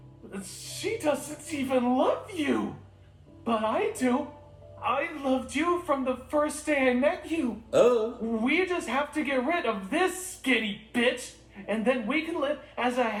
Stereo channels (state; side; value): identical; both; correlation 1.00